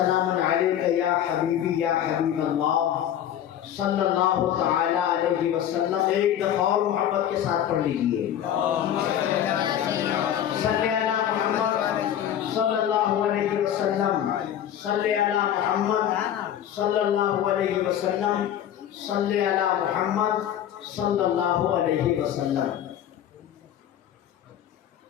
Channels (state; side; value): quieter; right; 10.5 dB